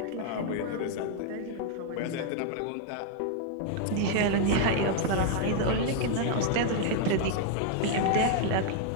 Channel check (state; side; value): different; both; correlation 0.00